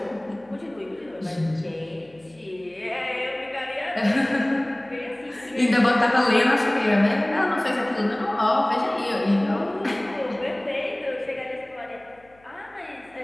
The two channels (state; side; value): noise; left; hum, 30 dB below the sound